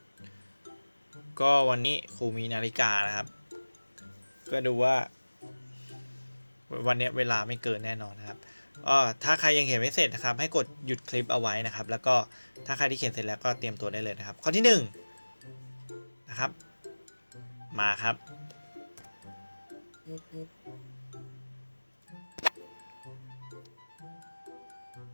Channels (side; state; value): both; inverted; correlation -1.00